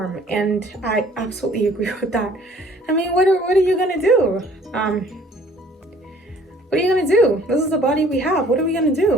And I absolutely agree with that. I mean, what are you gonna do? What are you gonna do? This is the body we have. What are we gonna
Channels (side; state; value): both; normal; correlation 0.55